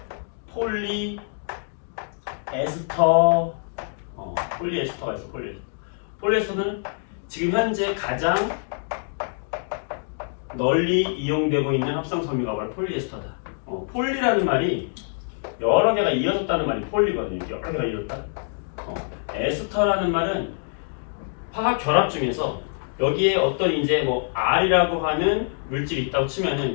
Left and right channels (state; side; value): silent; right; digital silence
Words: 폴리에스터 폴리에스터가 있어. 폴리에스터는 지금 현재 가장 널리 이용되고 있는 합성섬유가 바로 폴리에스터다. 폴리라는 말이 여러 개가 이어졌다는 말이 폴리거든요. 여러 개가 이어졌다. 에스터라는 말은 화학 결합 중에서 여기에 어떤 이제 뭐 R이라고 하는 물질이 있다고